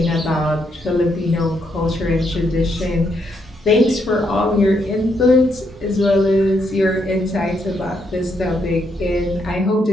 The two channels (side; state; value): both; normal; correlation 0.77